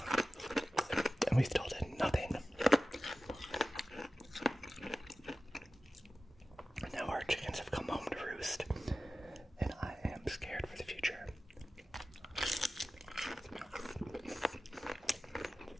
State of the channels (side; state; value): both; normal; correlation 0.95